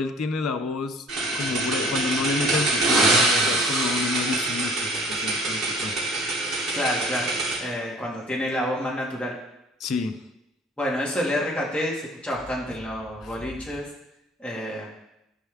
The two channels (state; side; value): normal; both; correlation 0.51